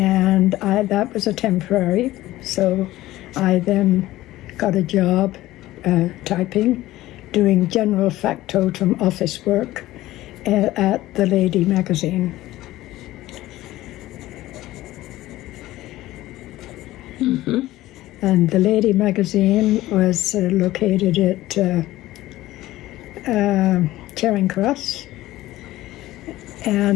that was a temporary, so I then got a job typing, doing general factotum office work at the Lady magazine. Mm-hmm. And the Lady magazine was located at Charing Cross,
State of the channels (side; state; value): right; quieter; 16.3 dB